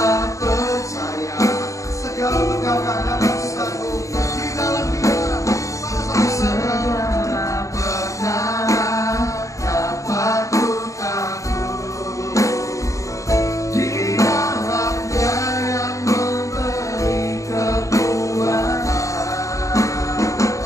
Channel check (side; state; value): right; late; 0.15 ms